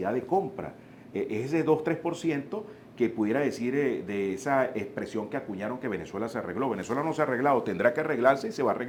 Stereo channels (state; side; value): identical; both; correlation 1.00